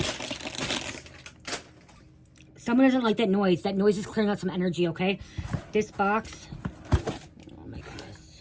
Someone doesn't like that noise. That noise is clearing out some energy, okay? This box. Oh my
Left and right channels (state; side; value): identical; both; correlation 1.00